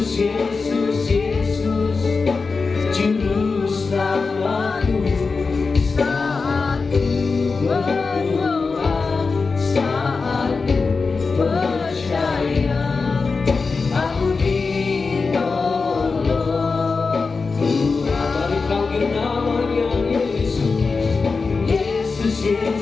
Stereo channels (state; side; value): quieter; right; 4.4 dB